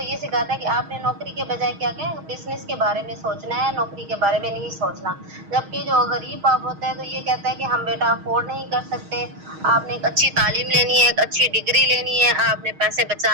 یہ سکھاتا ہے کہ آپ نے نوکری کے بجائے کیا کہیں بزنس کے بارے میں سوچنا ہے نوکری کے بارے میں نہیں سوچنا. جبکہ جو غریب باپ ہوتا ہے تو یہ کہتا ہے کہ ہم بیٹا افورڈ نہیں کر سکتے. آپ نے ایک اچھی تعلیم لینی ہے ایک اچھی ڈگری لینی ہے آپ نے پیسے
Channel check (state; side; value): late; left; 6.4 ms